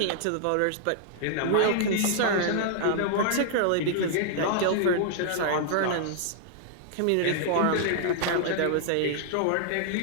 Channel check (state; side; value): different; both; correlation -0.01